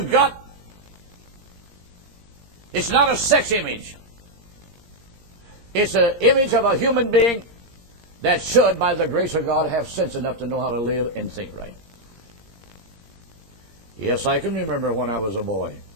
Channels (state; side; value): late; left; 17 ms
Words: got, it's not a sex image. It's an image of a human being that should, by the grace of God, have sense enough to know how to live and think right. Yes, I can remember when I was a boy.